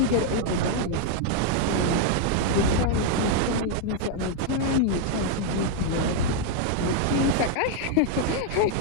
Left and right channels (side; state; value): both; different; correlation 0.00